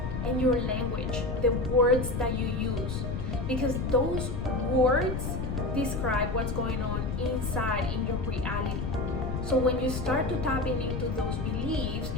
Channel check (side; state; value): left; noise; rumble, 3 dB below the sound